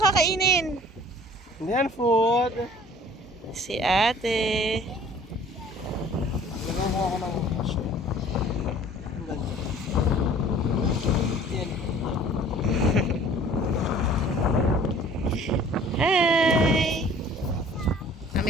kainin? Hindi yan food. Si ate. Lagyan mo ako ng shell. Yan. Hi!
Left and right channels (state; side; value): normal; both; correlation 0.50